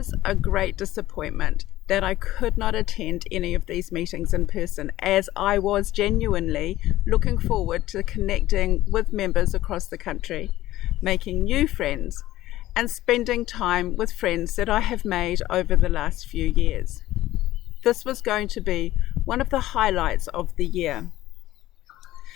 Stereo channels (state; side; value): quieter; right; 15.4 dB